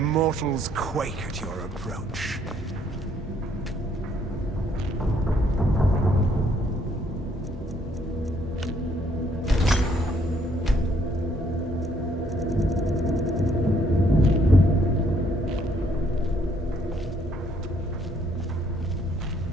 quake at your approach.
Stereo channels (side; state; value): both; normal; correlation 0.67